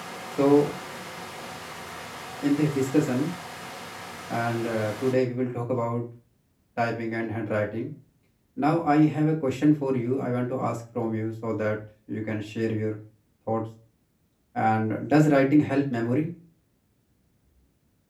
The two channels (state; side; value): identical; both; correlation 1.00